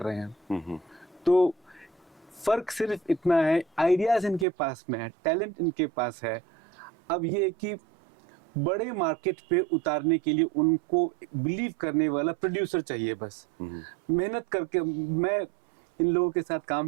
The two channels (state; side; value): drops out; left; at 4.5 s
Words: रहे हैं। तो फर्क सिर्फ इतना है, आइडियाज इनके पास में है, टैलेंट इनके पास है। अब ये है कि बड़े मार्केट पे उतारने के लिए उनको बिलीव करने वाला प्रोड्यूसर चाहिए बस। मेहनत करके मैं इन लोगों के साथ